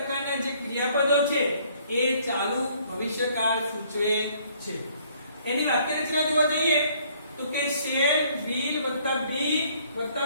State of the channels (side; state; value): both; inverted; correlation -0.62